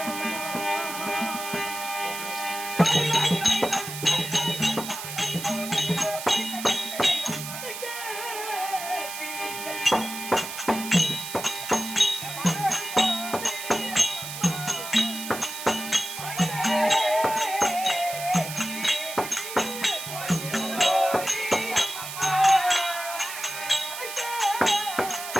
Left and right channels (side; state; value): right; noise; hiss, 8 dB below the sound